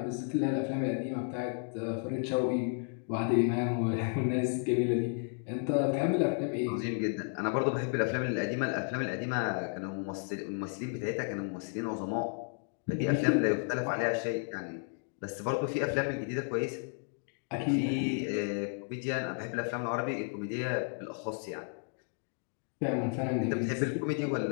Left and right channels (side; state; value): right; silent; 56 dB below the other